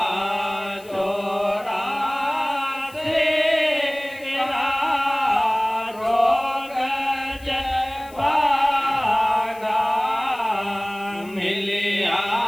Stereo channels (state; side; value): noise; left; hiss, 23 dB below the sound